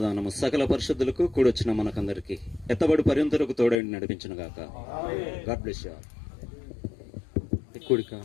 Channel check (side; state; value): right; drops out; at 3.8 s